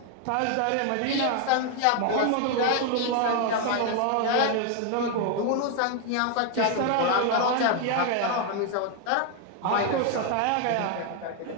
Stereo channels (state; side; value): different; both; correlation 0.01